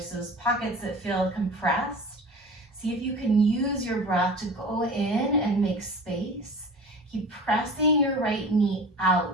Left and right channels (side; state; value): both; normal; correlation 0.37